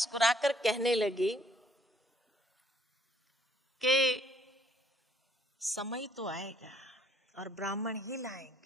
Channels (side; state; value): both; normal; correlation 0.64